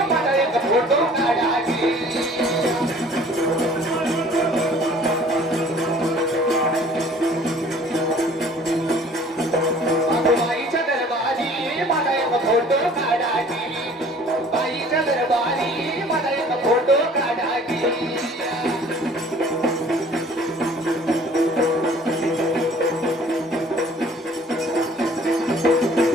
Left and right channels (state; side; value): normal; both; correlation 0.52